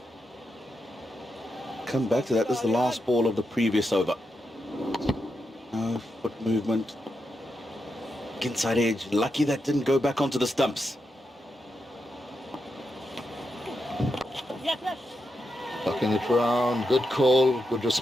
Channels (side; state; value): both; normal; correlation 0.86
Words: Come back to that. This is the last ball of the previous over. Foot movement. Inside edge. Lucky that didn't go back onto the stumps. Tucking it around. Good call. Good